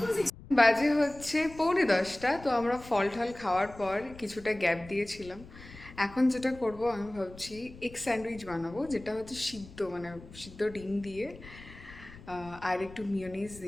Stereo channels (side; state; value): left; noise; rumble, 18 dB below the sound